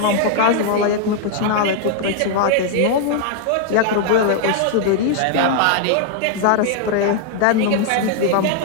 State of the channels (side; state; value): both; different; correlation 0.00